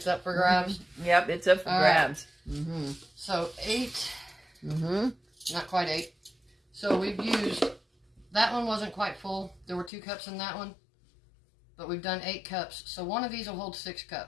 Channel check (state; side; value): drops out; right; at 9.9 s